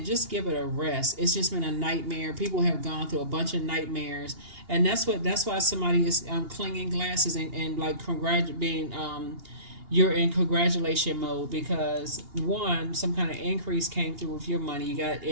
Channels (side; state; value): left; late; 2.8 ms